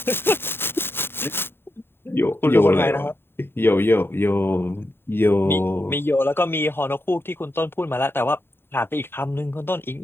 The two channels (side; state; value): right; late; 0.11 ms